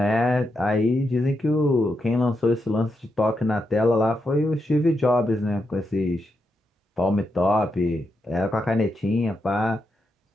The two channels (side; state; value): both; normal; correlation 0.84